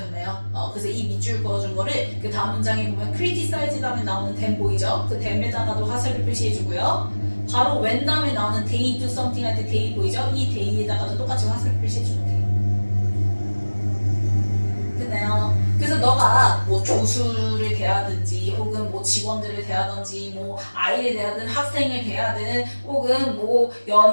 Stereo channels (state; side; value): inverted; both; correlation -1.00